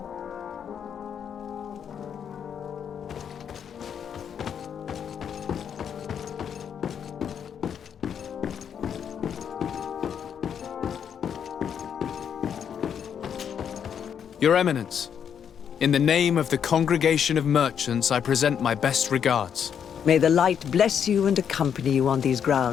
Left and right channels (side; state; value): right; quieter; 8.0 dB